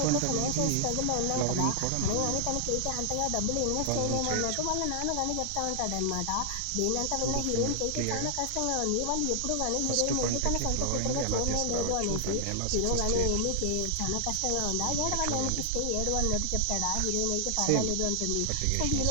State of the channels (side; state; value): both; different; correlation 0.00